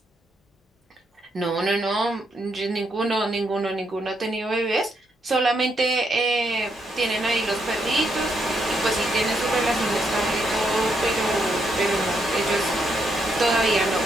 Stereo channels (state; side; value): normal; both; correlation 0.78